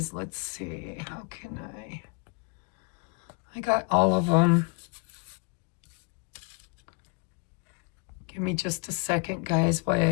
let's see, how can I got all of them. Give me just a second, guys, while I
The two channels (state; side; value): quieter; right; 30.2 dB